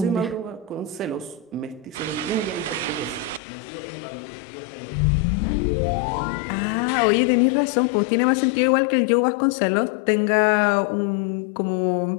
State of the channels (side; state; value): right; drops out; at 3.4 s